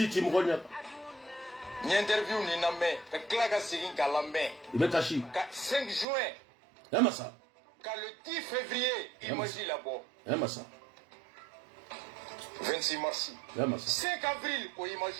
mgonya. Ni interview ni na me, ka klaka sigin kala me. Ibe kashi. Ka 5 juin. Massa. Ka le 10 février, imagine là-bas. Massa. 26 mars. 5 avril, ko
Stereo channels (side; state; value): left; drops out; at 6.1 s